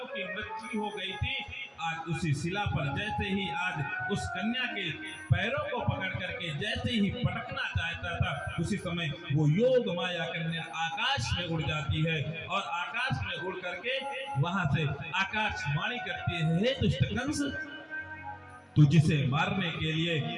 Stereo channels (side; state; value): both; identical; correlation 1.00